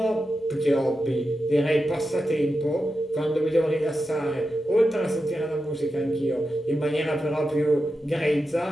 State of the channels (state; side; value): normal; both; correlation 0.90